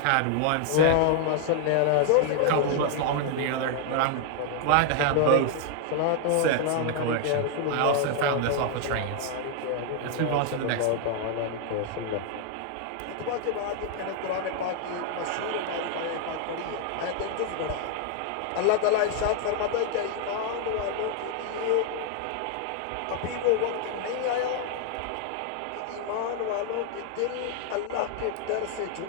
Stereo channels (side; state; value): both; different; correlation 0.00